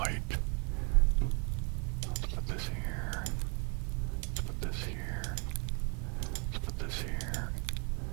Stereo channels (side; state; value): left; quieter; 35.6 dB